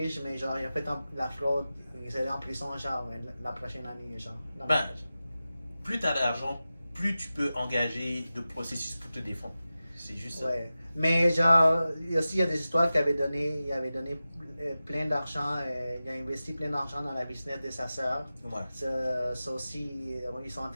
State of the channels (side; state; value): both; inverted; correlation -0.94